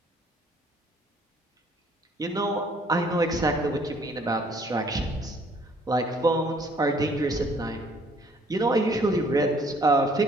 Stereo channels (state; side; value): normal; both; correlation 0.60